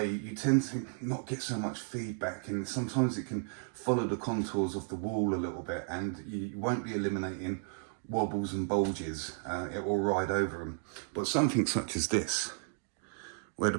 tend to not get so much feedback, and sometimes it can follow the contours of the wall a little bit, and you won't be eliminating wobbles and bulges. It will ride over them. But something such as this, where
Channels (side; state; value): left; silent; 55 dB below the other